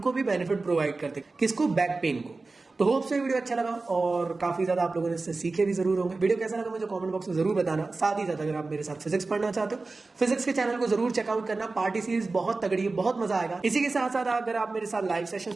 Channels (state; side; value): quieter; left; 3.6 dB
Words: भी बेनिफिट प्रोवाइड करते, किसको, बैक पेन को। तो होप से वीडियो अच्छा लगा और काफी ज्यादा आप लोगों ने इससे सीखे भी जरूर होंगे। वीडियो कैसा लगा मुझे कमेंट बॉक्स में जरूर बताना। साथ ही साथ अगर आप मेरे साथ फिजिक्स पढ़ना चाहते हो, फिजिक्स के चैनल को जरूर चेकआउट करना। पार्टी सीरीज बहुत तगड़ी है, बहुत मजा आएगा। इसी के साथ साथ अगर आप मेरे साथ लाइव